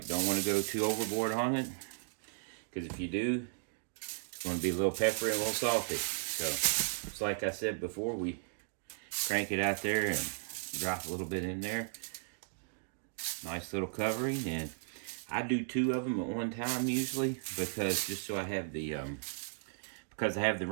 Don't want to go too overboard on it, because if you do, it's going to be a little peppery and a little salty. So, just like I said before, we crank it out there and drop a little bit in there. Nice little covering, and I do 2 of them at one time usually, because just so I have the because I have the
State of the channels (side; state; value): left; silent; digital silence